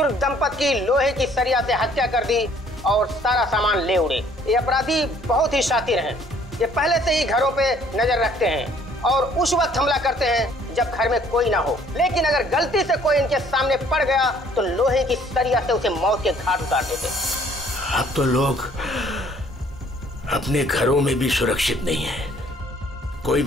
दंपत्ति की लोहे की सरिया से हत्या कर दी और सारा सामान ले उड़े। ये अपराधी बहुत ही शातिर हैं। ये पहले से ही घरों पे नजर रखते हैं और उस वक्त हमला करते हैं जब घर में कोई ना हो। लेकिन अगर गलती से कोई इनके सामने पड़ गया तो लोहे की सरिया से उसे मौत के घाट उतार देते। अब तो लोग अपने घरों में भी सुरक्षित नहीं है, कोई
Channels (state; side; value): normal; both; correlation 0.59